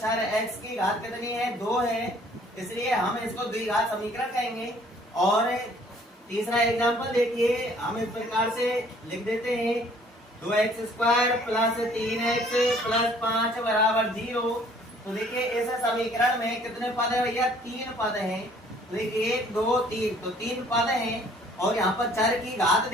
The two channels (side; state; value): both; normal; correlation 0.58